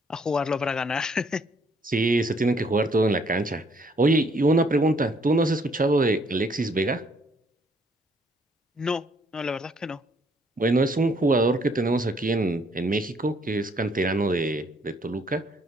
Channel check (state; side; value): normal; both; correlation 0.66